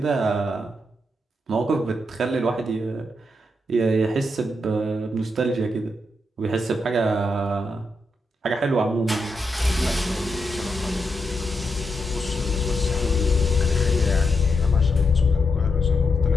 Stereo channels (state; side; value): normal; both; correlation 0.83